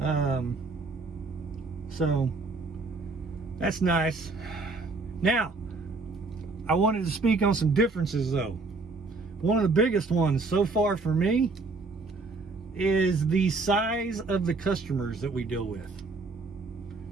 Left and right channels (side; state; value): left; quieter; 3.7 dB